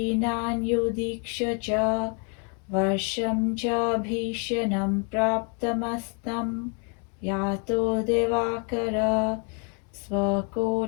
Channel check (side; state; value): right; quieter; 37.1 dB